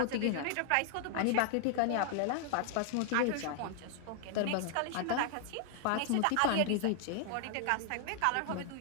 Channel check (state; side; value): different; both; correlation 0.00